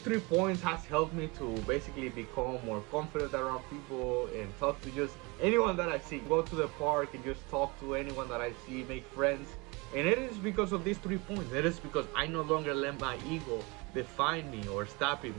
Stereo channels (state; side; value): quieter; left; 26.9 dB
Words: 3 points has helped me to basically become more confident around people and talk to just anyone that I see. Go to the park and just talk to anyone that I see, make friends. And it is because of these 3 points. It is because I no longer let my ego define me or